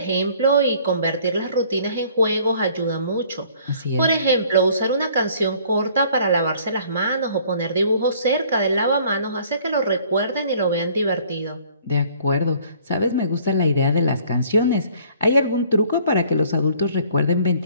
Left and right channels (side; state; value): both; inverted; correlation -0.56